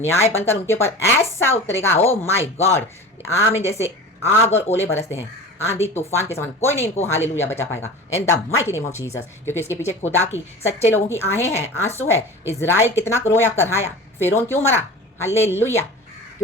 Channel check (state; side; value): normal; both; correlation 0.35